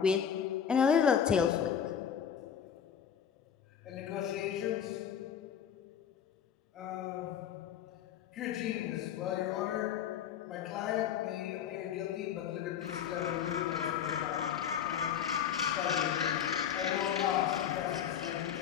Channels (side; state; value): right; quieter; 8.6 dB